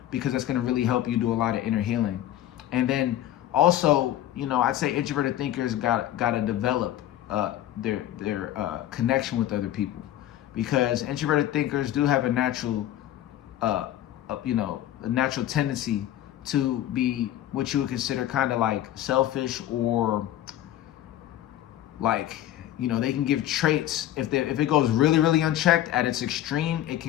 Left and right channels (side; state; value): right; quieter; 12.8 dB